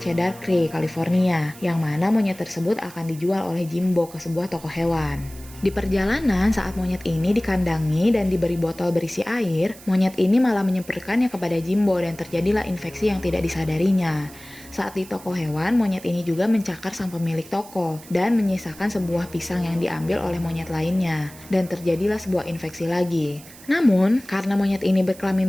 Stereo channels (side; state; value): right; noise; hiss, 19 dB below the sound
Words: Creek, California, yang mana monyet tersebut akan dijual oleh Jimbo ke sebuah toko hewan. Di perjalanan saat monyet ini dikandangi dan diberi botol berisi air, monyet ini malah menyemprotkannya kepada Jimbo dan terjadilah infeksi yang tidak disadarinya. Saat di toko hewan, monyet ini juga mencakar sang pemilik toko dan menyisakan sebuah pisang yang diambil oleh monyet lainnya, dan terjadilah sebuah infeksi lagi. Namun, karena monyet ini